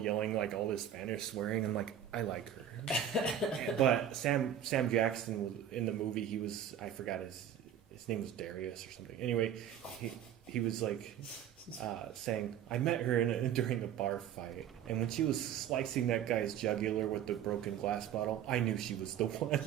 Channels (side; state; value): left; quieter; 9.4 dB